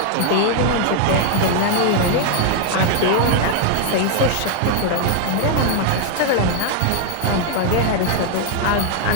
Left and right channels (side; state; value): both; different; correlation 0.00